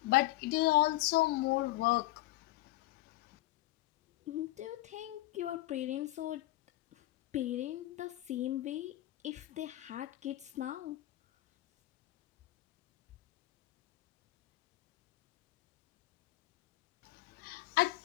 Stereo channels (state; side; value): quieter; right; 17.6 dB